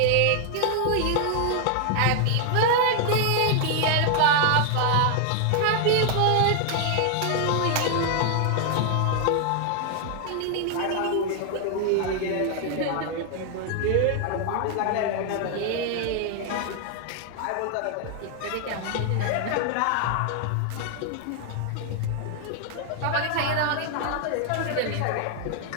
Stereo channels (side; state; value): both; different; correlation 0.00